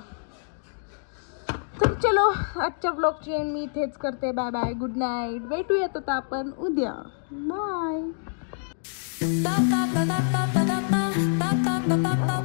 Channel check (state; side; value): silent; right; digital silence